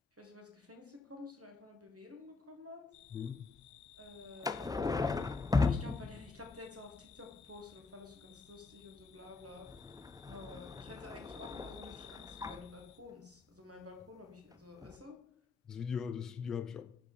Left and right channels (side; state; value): right; quieter; 3.9 dB